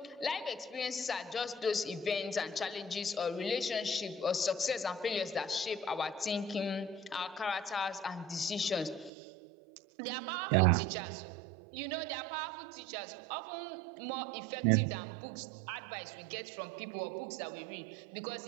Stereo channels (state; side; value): drops out; left; at 9.1 s